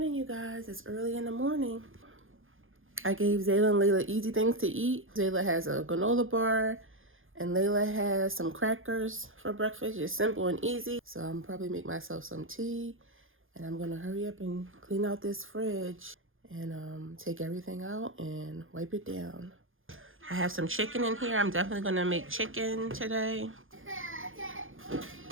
you guys. It's early in the morning. I gave Zayla and Layla easy things to eat. Zayla has a granola bar and Layla has some crackers for breakfast. Just simple and easy. So I'm probably make myself some tea and I'm gonna hurry up and clean out this fridge and take everything out and wipe it down. I have some chicken in here. I'm definitely gonna make chicken today.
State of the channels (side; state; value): left; late; 0.59 ms